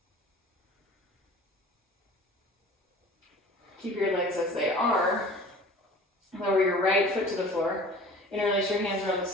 Keep your legs as they are. Lower your right foot to the floor. Interlace your hands around the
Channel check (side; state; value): both; normal; correlation 0.44